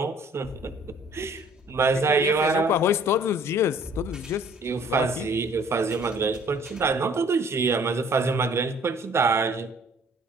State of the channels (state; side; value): normal; both; correlation 0.56